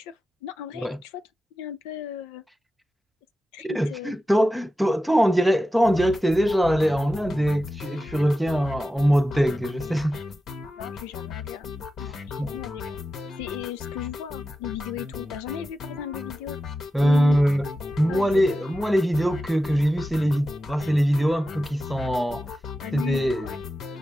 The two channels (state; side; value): normal; both; correlation 0.92